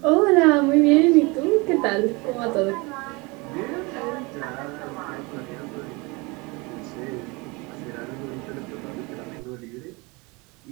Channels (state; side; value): quieter; left; 26.4 dB